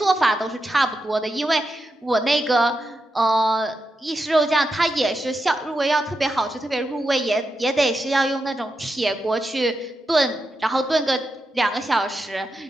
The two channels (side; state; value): both; normal; correlation 0.87